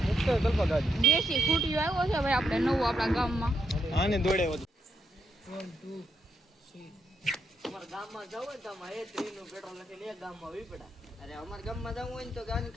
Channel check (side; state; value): both; normal; correlation 0.81